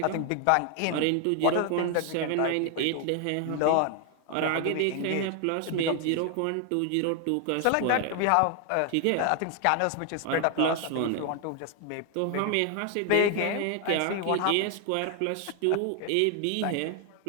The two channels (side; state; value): both; different; correlation 0.00